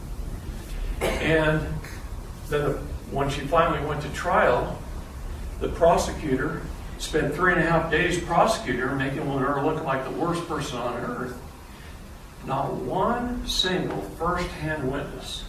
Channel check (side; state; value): both; identical; correlation 1.00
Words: And then when she finally went to trial, the prosecutor spent 3.5 days prosecuting her, making her look like the worst person on earth. Not one single first-hand witness,